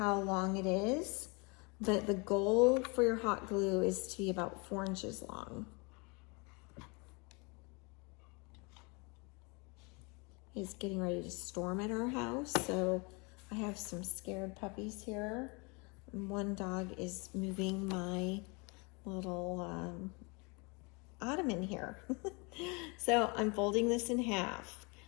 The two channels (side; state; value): right; quieter; 30.2 dB